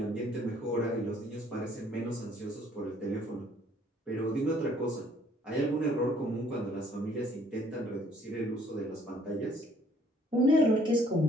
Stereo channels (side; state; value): both; normal; correlation 0.61